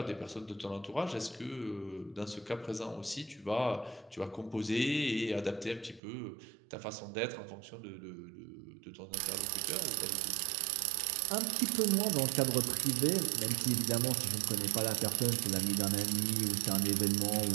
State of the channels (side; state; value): left; drops out; at 6.0 s